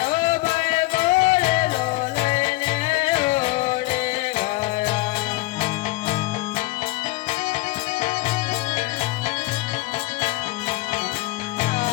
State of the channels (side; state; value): right; quieter; 20.7 dB